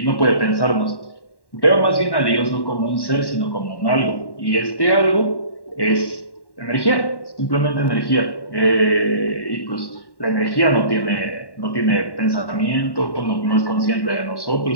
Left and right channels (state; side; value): late; right; 1.1 ms